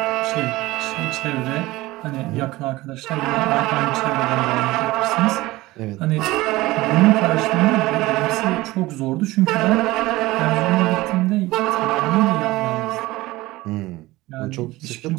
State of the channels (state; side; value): quieter; left; 19.1 dB